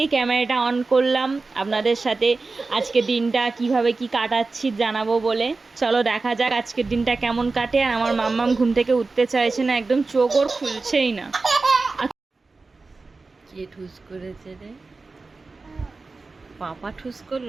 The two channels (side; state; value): left; quieter; 3.8 dB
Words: ক্যামেরাটা অন করলাম আপনাদের সাথে আজকের দিনটা কিভাবে কি কাটাচ্ছি জানাবো বলে। চলো দেখা যাক আজকের দিনটা কেমন কাটে। আর আমার মাম্মাম ঘুম থেকে উঠতে চাইছে না, একদম চোখ ওর খুলছেই না। কে ঠুস করেছে রে? পাপা ঠুস